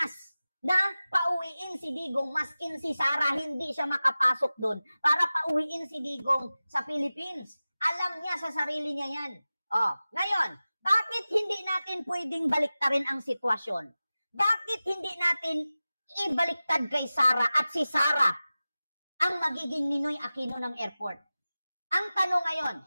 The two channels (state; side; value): inverted; both; correlation -0.96